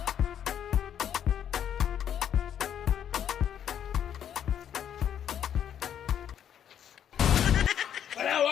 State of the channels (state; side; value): quieter; right; 9.4 dB